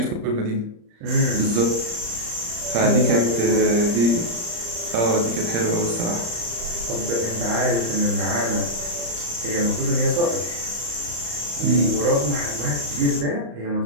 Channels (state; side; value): late; left; 35 ms